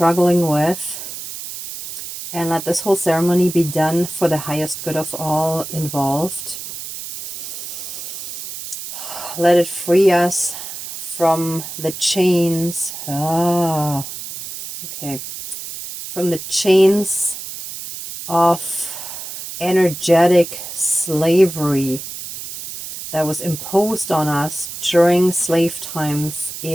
with, and let this whole ceremony be done for the highest good of all involved. Let it free us from the chains. From the chains of energetic slavery that was imposed on us during slave times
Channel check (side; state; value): right; noise; hiss, 9 dB below the sound